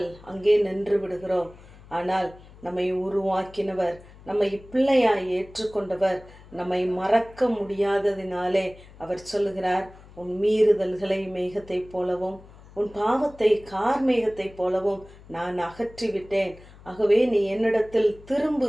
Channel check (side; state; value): left; noise; hum, 21 dB below the sound